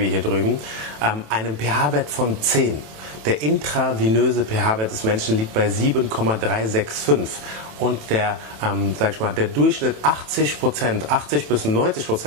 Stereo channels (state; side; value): late; left; 27 ms